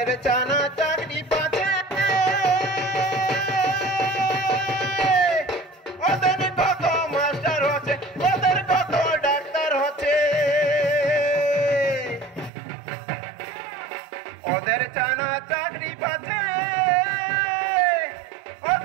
জানা চাকরি পাচ্ছে, ওদের কত মাস্টার হচ্ছে, ওদের কত ডাক্তার হচ্ছে। ওদের জানা চাকরি পাচ্ছে,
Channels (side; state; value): left; drops out; at 12.5 s